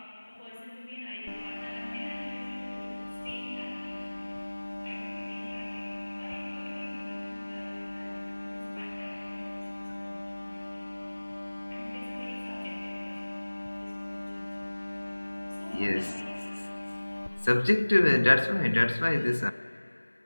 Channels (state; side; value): inverted; both; correlation -1.00